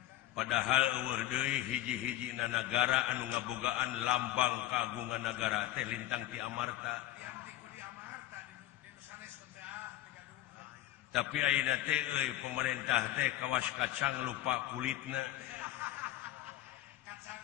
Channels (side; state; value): right; quieter; 14.4 dB